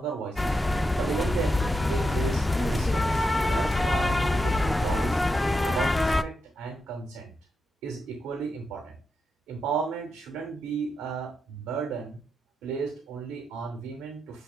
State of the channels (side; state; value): both; normal; correlation 0.86